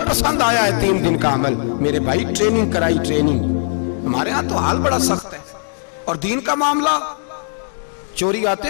पसंद आया है 3 दिन का अमल। मेरे भाई ट्रेनिंग कराई, ट्रेनिंग। हमारे यहाँ तो हाल बड़ा सख्त है। और दीन का मामला, चोरी आते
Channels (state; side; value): silent; right; digital silence